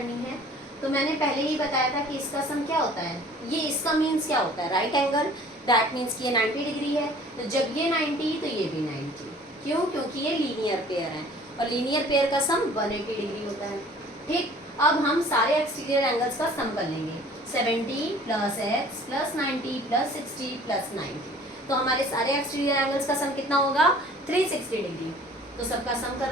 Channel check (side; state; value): both; normal; correlation 0.50